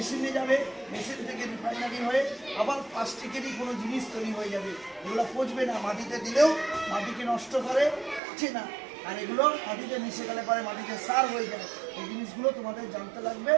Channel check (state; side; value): drops out; left; at 8.2 s